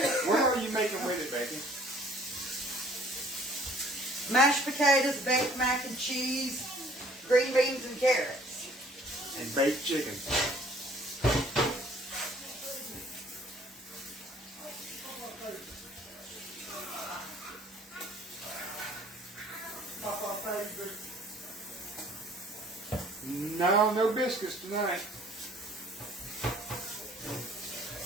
What are you making with it, Becky? Mashed potatoes, baked mac and cheese, green beans and carrots. And baked chicken. No, no biscuits tonight.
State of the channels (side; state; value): both; normal; correlation 0.55